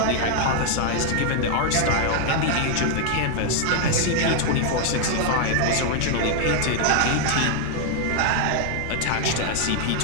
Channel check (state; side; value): different; both; correlation 0.00